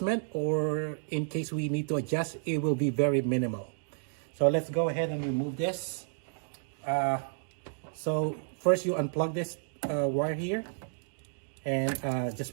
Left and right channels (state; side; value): silent; left; digital silence